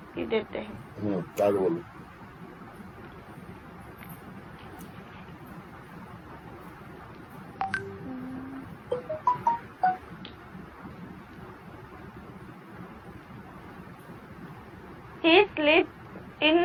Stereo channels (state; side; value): identical; both; correlation 1.00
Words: देते हैं. क्या बोलूं? He sleeps